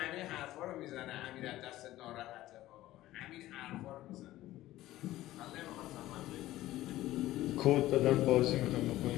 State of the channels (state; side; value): quieter; right; 15.5 dB